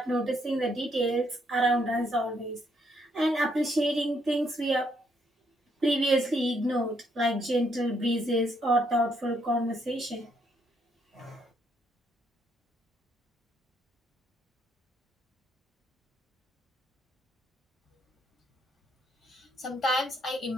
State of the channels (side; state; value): both; normal; correlation 0.73